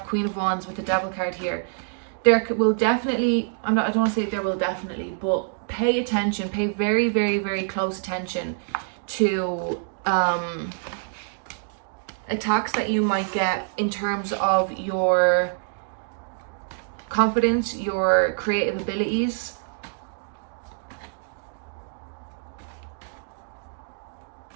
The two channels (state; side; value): silent; left; digital silence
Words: Queen of Wands with the Devil card here. There will definitely, I don't want to say there will definitely, but pay attention, pay very, very, very close attention to attacks that you might get in terms of your confidence, your creative abilities.